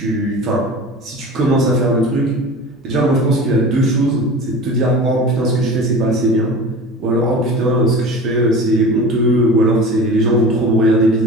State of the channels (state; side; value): normal; both; correlation 0.36